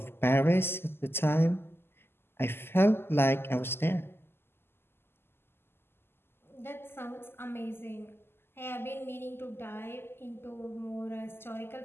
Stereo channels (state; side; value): late; right; 0.11 ms